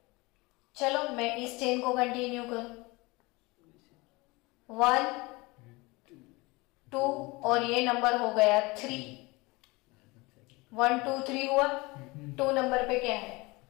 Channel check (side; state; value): right; quieter; 24.0 dB